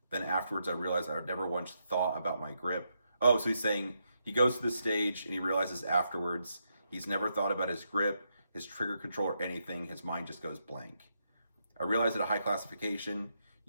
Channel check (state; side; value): inverted; both; correlation -0.81